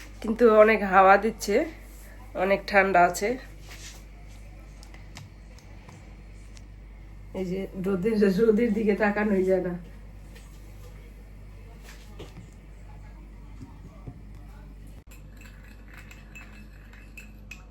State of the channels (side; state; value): both; identical; correlation 1.00